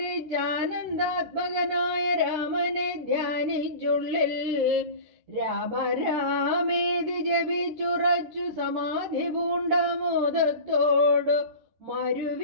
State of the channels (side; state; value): left; late; 13 ms